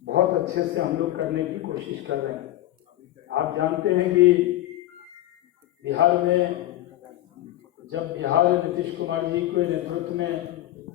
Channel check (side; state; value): right; quieter; 14.7 dB